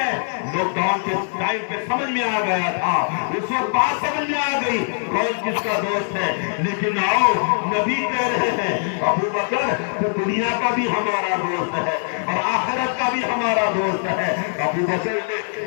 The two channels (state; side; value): silent; right; 55 dB below the other